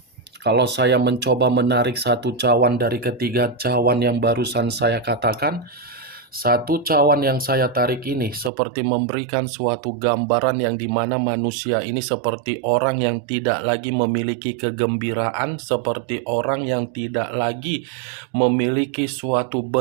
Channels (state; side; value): drops out; left; at 8.5 s